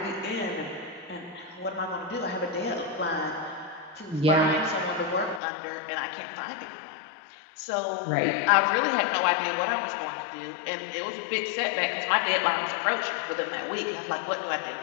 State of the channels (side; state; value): right; drops out; at 5.4 s